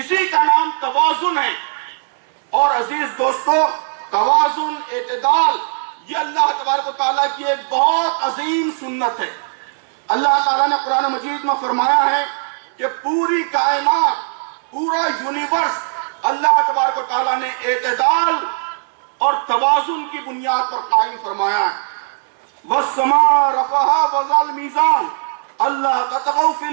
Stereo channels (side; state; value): left; silent; 67 dB below the other